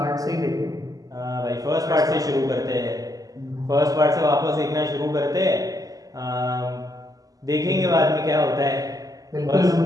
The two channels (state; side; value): late; left; 0.17 ms